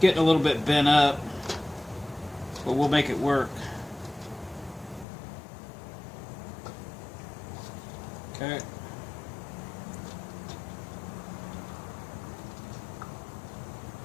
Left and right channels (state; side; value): drops out; right; at 5.1 s